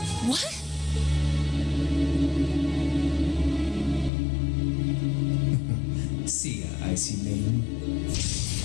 What? See ya, Icy Maiden.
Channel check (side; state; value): right; drops out; at 4.1 s